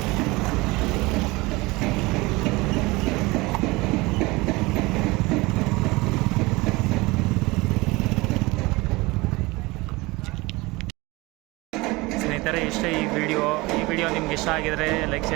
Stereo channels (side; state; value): left; quieter; 22.6 dB